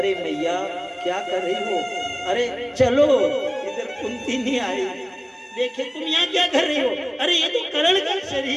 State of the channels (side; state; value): both; identical; correlation 1.00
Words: मैया क्या कर रही हो, अरे चलो। इधर कुंती नहीं आई, देखे तुम यहाँ क्या कर रही हो, अरे ये तो कर्ण का